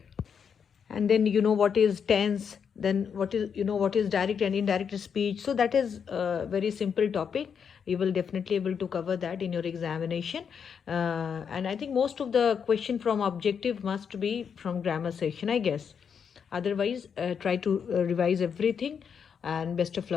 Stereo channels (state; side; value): quieter; right; 7.0 dB